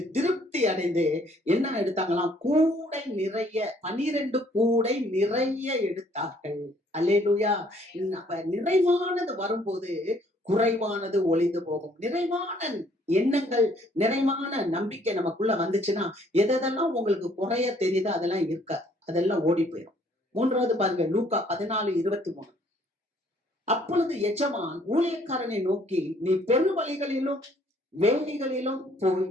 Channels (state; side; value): normal; both; correlation 0.62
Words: திருப்தி அடைந்து என்ன எடுத்தாங்களாம்? கூடை நிறைய 12 கூடை நிறைய எடுத்தார்கள். அல்லேலூயா. அப்ப நிறைவானது வரும்போது குறைவானது ஒளிந்து போகும். நிறைவான எண்ணங்கள், நிறைவான நம்பிக்கை நமக்குள்ள வந்துச்சுன்னா எதெல்லாம் உங்களுக்கு குறைய தெரியுதோ அதெல்லாம் இருக்காது. அதெல்லாம் ஓடி போயிடும். 3வது பாருங்க, லூக்கா 14:23. அப்பொழுது எஜமான் ஊழியக்காரனை நோக்கி, நீ பெருவழிகளிலும் வேலிகளிலும் போய்